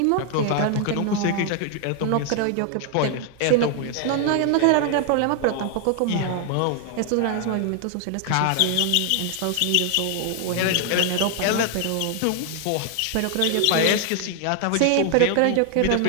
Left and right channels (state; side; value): different; both; correlation 0.00